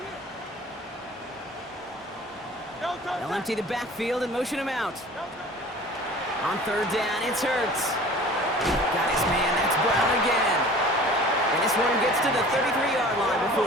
They'll empty the backfield and motion him out. On third down, it's Hurts. Got his man, that's Brown again. And this one gets to the 33-yard line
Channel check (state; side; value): normal; both; correlation 0.44